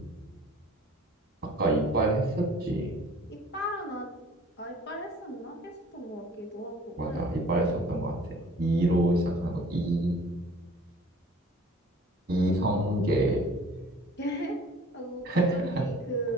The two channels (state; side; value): normal; both; correlation 0.50